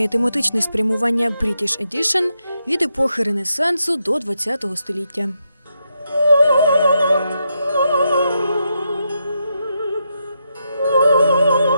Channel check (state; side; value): inverted; both; correlation -0.83